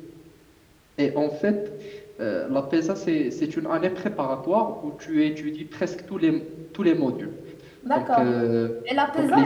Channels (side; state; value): both; identical; correlation 1.00